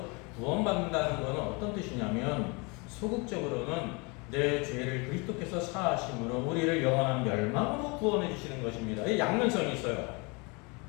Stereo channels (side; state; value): right; quieter; 29.4 dB